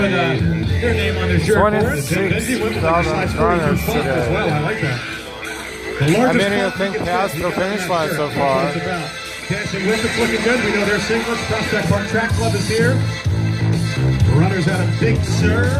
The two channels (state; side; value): identical; both; correlation 1.00